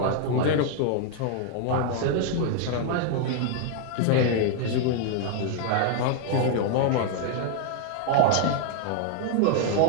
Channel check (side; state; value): both; different; correlation 0.00